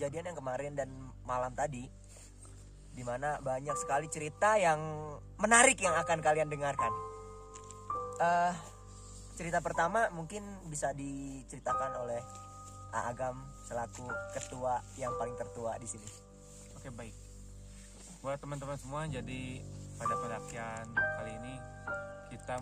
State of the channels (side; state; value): both; identical; correlation 1.00